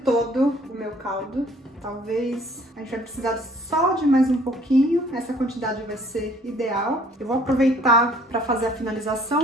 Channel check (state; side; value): normal; both; correlation 0.58